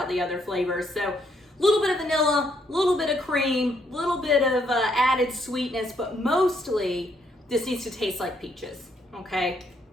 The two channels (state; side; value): normal; both; correlation 0.72